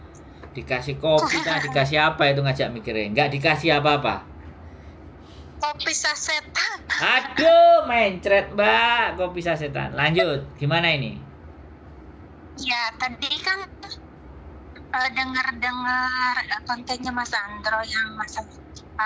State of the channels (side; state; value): both; identical; correlation 1.00